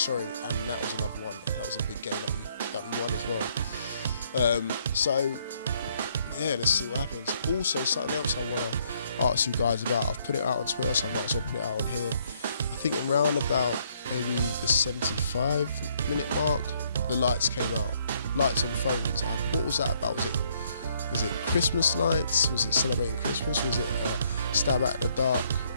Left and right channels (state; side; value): inverted; both; correlation -0.68